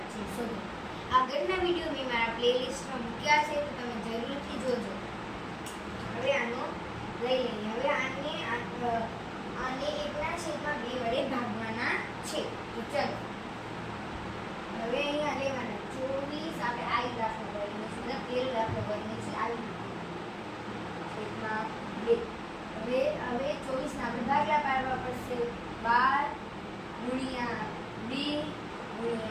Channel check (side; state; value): both; identical; correlation 1.00